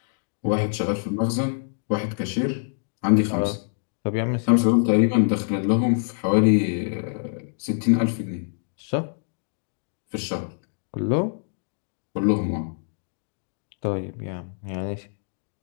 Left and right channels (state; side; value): silent; right; digital silence